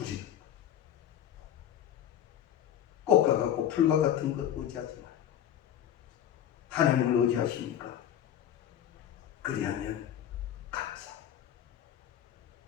거예요. 꽃과 같고 풀과 같은 것 의지하지 말고 하나님을 의지하십니까? 그리하면 감사.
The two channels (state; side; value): quieter; right; 10.5 dB